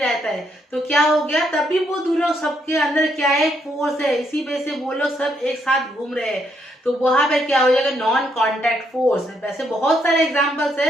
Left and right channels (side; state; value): both; normal; correlation 0.75